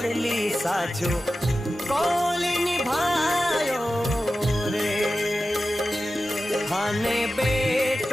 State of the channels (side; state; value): both; normal; correlation 0.93